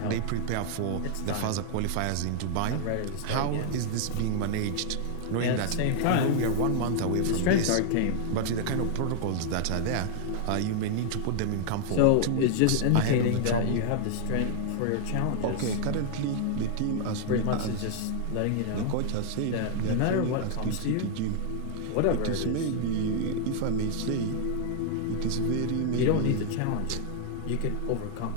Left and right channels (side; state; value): both; different; correlation 0.00